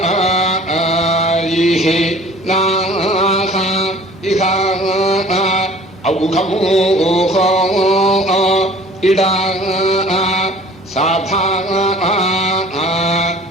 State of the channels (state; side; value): normal; both; correlation 0.49